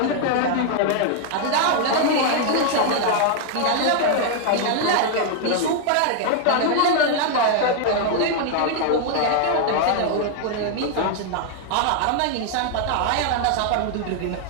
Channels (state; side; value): different; both; correlation 0.00